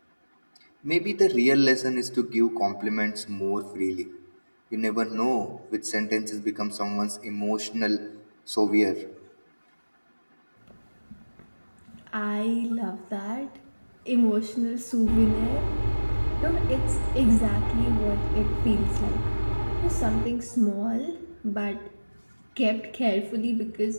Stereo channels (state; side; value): inverted; both; correlation -1.00